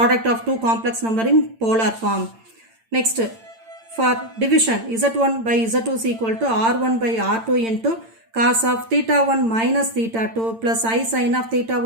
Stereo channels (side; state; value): left; late; 8.9 ms